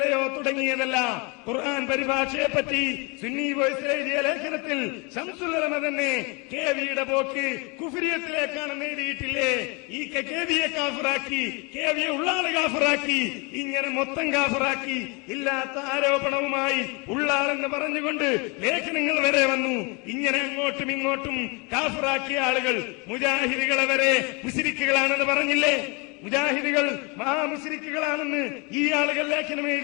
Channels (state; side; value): quieter; right; 30.4 dB